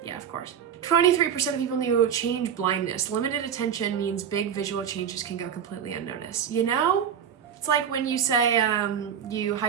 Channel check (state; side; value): quieter; left; 8.4 dB